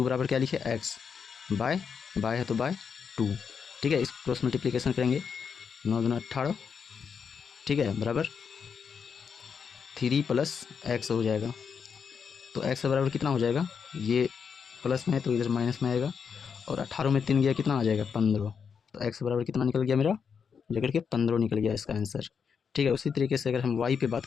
बराबर क्या लिखे, x बाय है तो बाय 2। ठीक है, इस क्रॉस मल्टीप्लिकेशन करेंगे, 9 दूना 18। ठीक है, बराबर 3 प्लस x हो जाएगा। तो x बराबर कितना हो जाएगा, ये प्लस में है तो इधर माइनस में आएगा, और 18 में 3 गया कितना आ जाएगा 15। तो x बराबर कितना निकल गया मेरा, लेकर के 15 निकल गया इसका आंसर। ठीक है, उसी तरीके से अगर हम y पे बात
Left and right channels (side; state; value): right; quieter; 6.5 dB